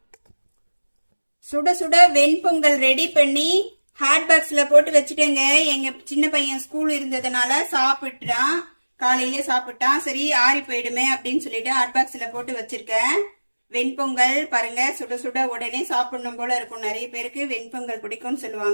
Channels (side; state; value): both; inverted; correlation -1.00